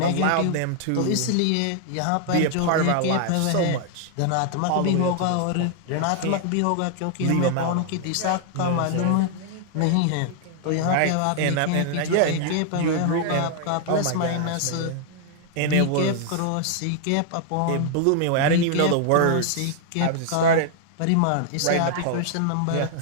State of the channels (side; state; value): both; different; correlation 0.00